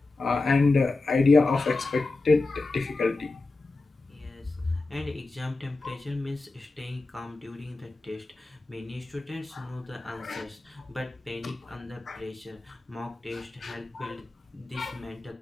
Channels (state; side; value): quieter; right; 3.3 dB